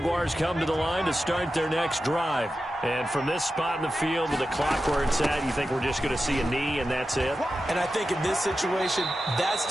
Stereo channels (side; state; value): both; normal; correlation 0.92